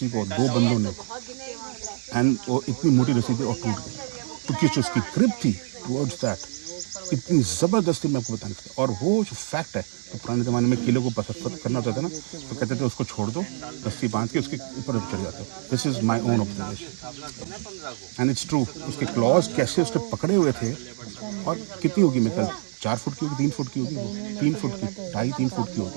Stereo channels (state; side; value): silent; left; 61 dB below the other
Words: को, दो बंदों ने, एंड वो इतनी मोटी रस्सी थी और टूट गई। तो किस उसकी ग्रिप थी टुवर्ड्स दैट, इतनी ज़बरदस्ती मैं आपको बता नहीं सकता। और वो जो फैक्ट है, तो पुराने ज़माने में किले को पसंद करना होता था ना, तो कहते थे उसको छोड़ दो, रस्सी बांध के उसके ऊपर चढ़ जाते हो। This is my own observation and it's true. उसके क्लॉज कैसे उसने पकड़े हुए थे, और कितनी होगी, मैं कल 4 फुट की होगी, 3 फुट की होगी, वो 3 फुट की, 2.5-3 फुट की